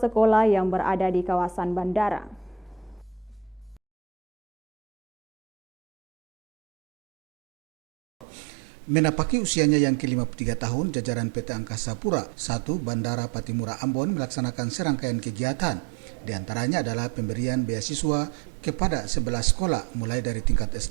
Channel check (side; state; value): left; drops out; at 8.2 s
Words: sekolah yang berada di kawasan bandara. Menapaki usianya yang ke-53 tahun, jajaran PT Angkasa Pura I Bandara Patimura Ambon melaksanakan serangkaian kegiatan. Di antaranya adalah pemberian beasiswa kepada 11 sekolah mulai dari tingkat